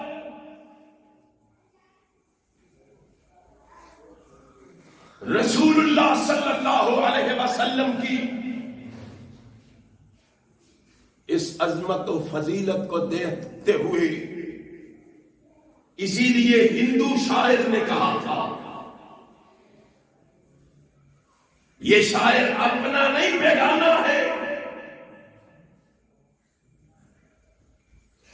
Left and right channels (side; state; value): both; identical; correlation 1.00